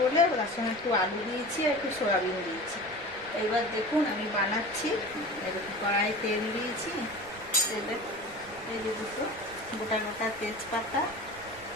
বলে তার সঙ্গে একটু আলু দিয়েছি আর একটু সয়াবিন দিয়েছি। এইবার দেখুন আমি বানাচ্ছি। এরকম কড়াই তেল দিয়েছি, তেলে এই যে দুটো গোটা গোটা তেজপাতা,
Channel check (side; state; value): right; noise; rumble, 21 dB below the sound